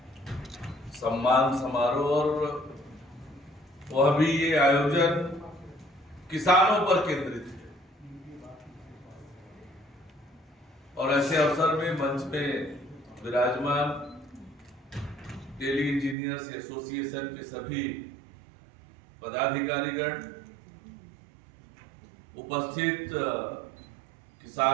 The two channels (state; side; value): drops out; left; at 16.2 s